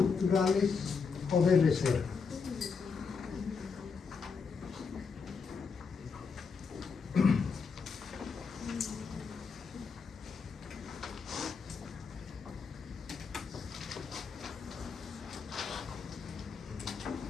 o de reserva.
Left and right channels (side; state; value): right; quieter; 5.4 dB